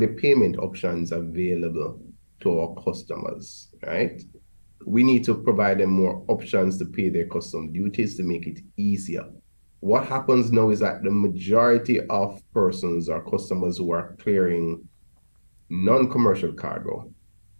payment options available to our customers, right? We need to provide them more options to pay their custom duties to make it easier. What happens now is that the majority of persons or customers who are clearing non-commercial cargo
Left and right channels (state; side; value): inverted; both; correlation -1.00